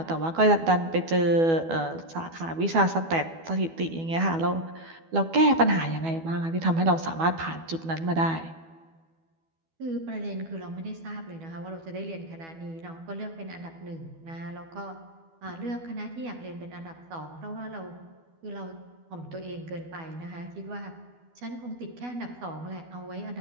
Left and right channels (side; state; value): left; late; 12 ms